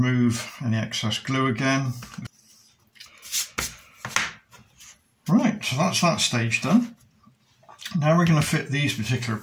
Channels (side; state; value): both; identical; correlation 1.00